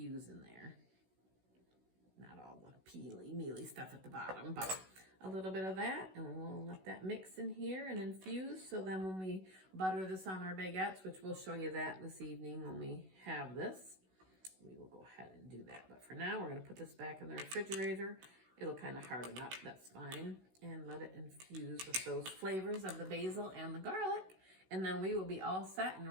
in there. Not all the peely, mealy stuff at the bottom, but a little bit of that, and we'll let that mix in here and infuse. So then when we butter this on our baguettes, which we'll show you that this evening when we have this, we will go ahead and do that. But for now, we're gonna put this back in the refrigerator. It'll kind of harden up, that's fine. And let it infuse with those flavors of the basil and the garlic. And then we will be all set and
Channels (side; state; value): left; late; 16 ms